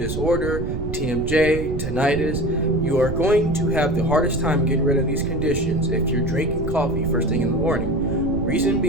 TMJ, tinnitus, you are going to have the hardest time getting rid of these conditions if you're drinking coffee first thing in the morning. Reason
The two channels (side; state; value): right; noise; rumble, 5 dB below the sound